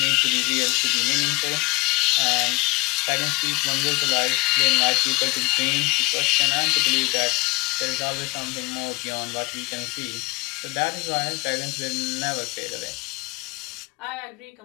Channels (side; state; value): right; quieter; 24.3 dB